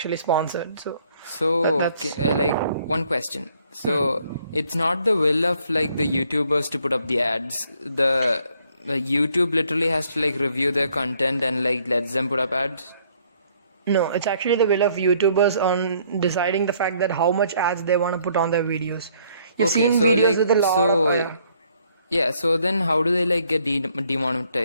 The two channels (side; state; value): both; inverted; correlation -0.65